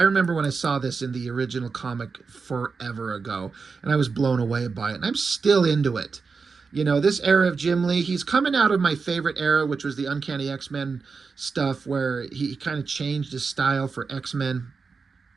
remember when I saw this in the original comic forever ago, and I was blown away by it, and I'm still into it. You know, this era of Jim Lee, he's coming out of my favorite era, which was the Uncanny X-Men stuff, where he kind of changed his style for X-Men,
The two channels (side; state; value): left; quieter; 4.9 dB